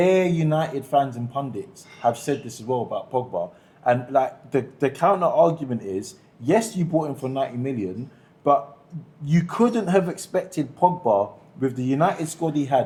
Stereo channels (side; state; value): both; identical; correlation 1.00